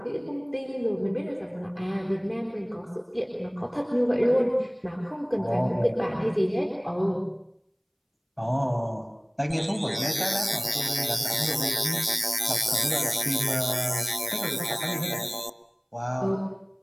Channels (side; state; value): both; identical; correlation 1.00